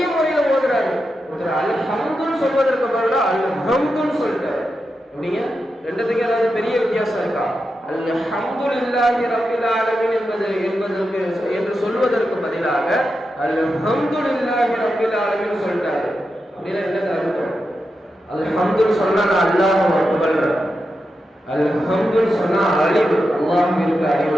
முறையில் ஓதுறாரு. அல்ஹம்துன்னு சொல்வதற்கு பதிலாக அல்ஹம்துன்னு சொல்லிட்டாரு. அப்படிங்க, ரெண்டுத்துக்கு ஏதாவது பெரிய வித்தியாசம் இருக்கா? அல்ஹம்துலில்லாஹி ரப்பில் ஆலமீன் என்று சொல்வதற்கு பதிலாக அல்ஹம்துலில்லாஹி ரப்பில் ஆலமீன் சொல்லிட்டாரு. அப்படின்னா என்ன அர்த்தம்? அல்ஹம்துன்னு சொன்னா அல்லாஹ் அக்பர், அல்ஹம்துன்னு சொன்னா அழிவு, அல்லாஹ்விற்கு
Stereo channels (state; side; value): normal; both; correlation 0.88